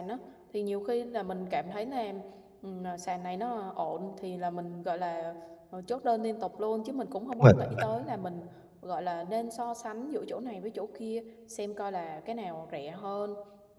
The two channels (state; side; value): identical; both; correlation 1.00